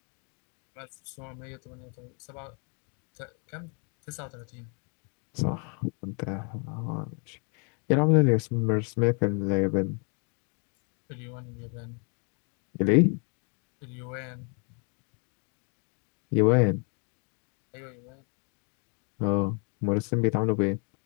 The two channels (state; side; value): quieter; right; 37.8 dB